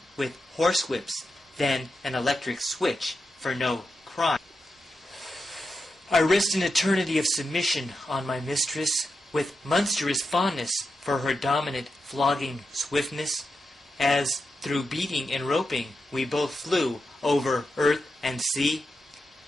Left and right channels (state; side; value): normal; both; correlation 0.87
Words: with horsewhips, then an electric switch for no crime. I risked an eternity of submission on my mistress, with monstrous fondness for her dominant flogging swiftness, as through beating and roping we both flew over earth and sea.